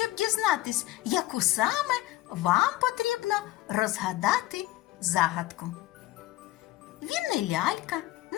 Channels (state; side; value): quieter; right; 16.5 dB